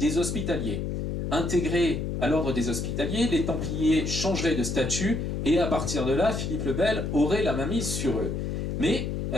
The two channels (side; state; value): left; noise; hum, 2 dB below the sound